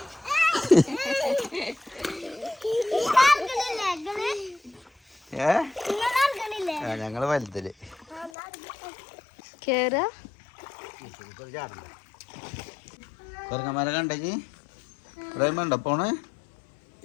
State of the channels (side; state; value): right; drops out; at 8.3 s